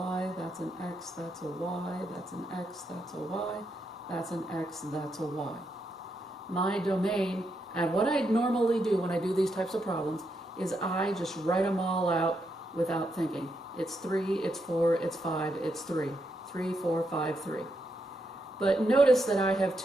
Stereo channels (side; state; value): both; normal; correlation 0.81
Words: that's an x, that's a y, that's an x, that's a y, that's an x, that's a y. My domain, and what I normally do when I do these types of problems, is I just write them all out without thinking. It's 3, it's 4, it's 5, it's 3. 3, 4, 5, 3. But notice that I have